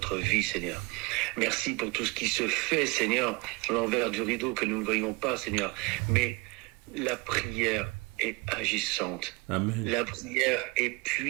vie, Seigneur. Merci pour tout ce qui se fait, Seigneur, à l'envers du rideau que nous ne voyons pas, Seigneur. Mais la prière est agissante. Amen. La prière est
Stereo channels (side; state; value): left; quieter; 26.3 dB